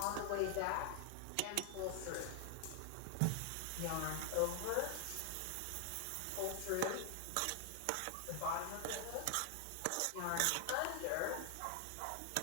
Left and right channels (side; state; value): both; different; correlation 0.00